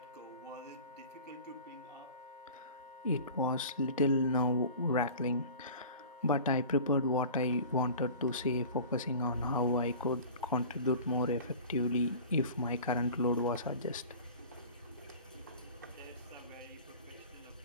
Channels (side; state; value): both; inverted; correlation -0.40